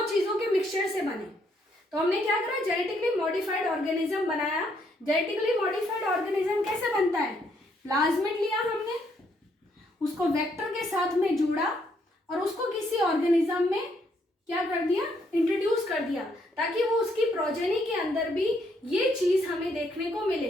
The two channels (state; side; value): normal; both; correlation 0.72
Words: दो चीजों के मिक्सचर से बने। तो हमने क्या करा, जेनेटिकली मॉडिफाइड ऑर्गेनिज्म बनाया। जेनेटिकली मॉडिफाइड ऑर्गेनिज्म कैसे बनता है, प्लाज्मिड लिया हमने, उसको वेक्टर के साथ में जोड़ा और उसको किसी ऑर्गेनिज्म में क्या कर दिया, इंट्रोड्यूस कर दिया, ताकि वो उसकी प्रोजेनी के अंदर भी ये चीज हमें देखने को